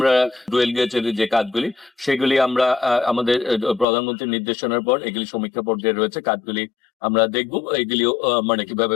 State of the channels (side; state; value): right; drops out; at 3.9 s